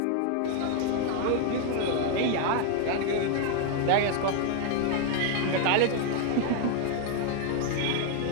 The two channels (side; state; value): both; different; correlation 0.00